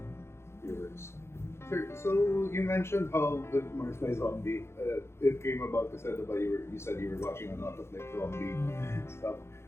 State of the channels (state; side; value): late; right; 0.12 ms